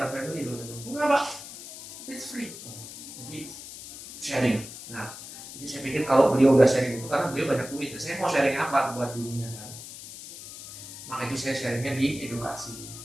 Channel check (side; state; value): left; noise; hiss, 13 dB below the sound